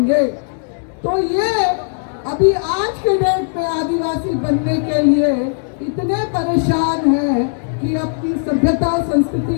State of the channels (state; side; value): silent; right; digital silence